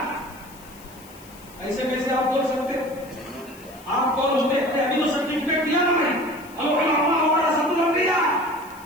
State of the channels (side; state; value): left; noise; hiss, 22 dB below the sound